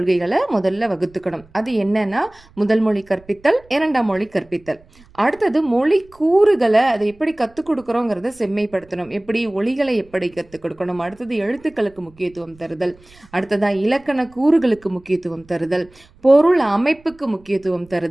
முதல்ல வகுத்துக்கணும். அது என்னன்னா முதல் மொழி கற்பித்தல், இரண்டாம் மொழி கற்பித்தல். அடுத்தது மொழி கூறுகளை அதை எப்படி கற்றுக் கொடுக்குறோங்கிறத செம்மைப்படுத்தணும். எப்படி ஒலிகளை எப்படி கற்றுக் கொடுக்கணும். அடுத்தது எழுத்துக்களுக்கு முக்கியத்துவம் தருதல். அடுத்ததாக இலக்கண கூறுகளுக்கு முக்கியத்துவம் தருதல், பொருள் அமைப்புக்கு முக்கியத்துவம்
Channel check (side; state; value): right; noise; rumble, 27 dB below the sound